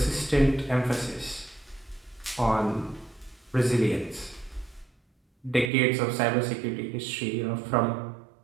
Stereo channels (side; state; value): left; drops out; at 5.7 s